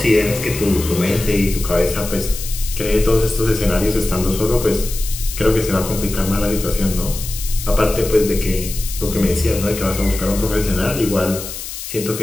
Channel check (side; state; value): left; noise; hiss, 9 dB below the sound